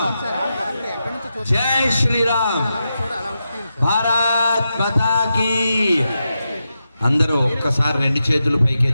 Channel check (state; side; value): inverted; both; correlation -0.88